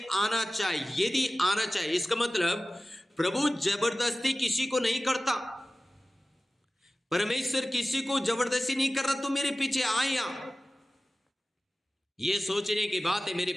आना चाहे, यदि आना चाहे, इसका मतलब प्रभु जबरदस्ती किसी को नहीं करता। परमेश्वर किसी को जबरदस्ती नहीं कर रहा तो मेरे पीछे आए या ये सोचने की बात है मेरे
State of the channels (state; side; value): normal; both; correlation 0.96